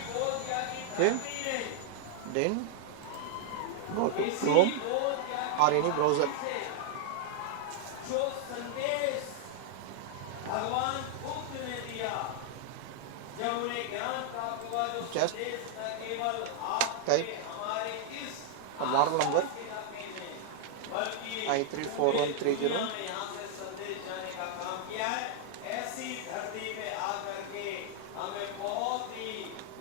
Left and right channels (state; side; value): different; both; correlation -0.01